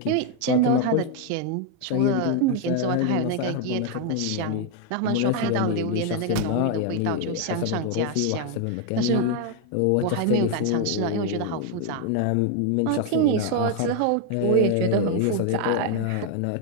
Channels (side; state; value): both; different; correlation 0.01